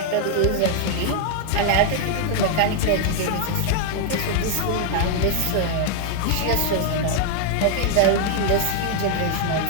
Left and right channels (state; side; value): different; both; correlation 0.00